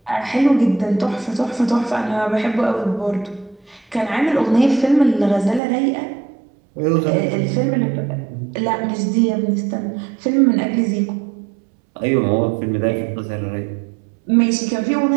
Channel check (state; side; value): drops out; left; at 5.6 s